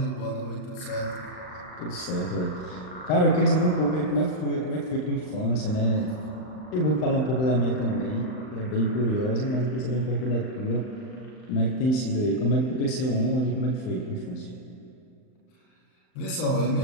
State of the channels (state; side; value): late; right; 39 ms